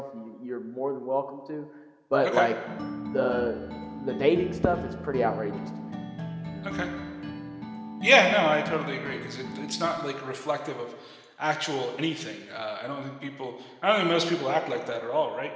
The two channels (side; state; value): both; identical; correlation 1.00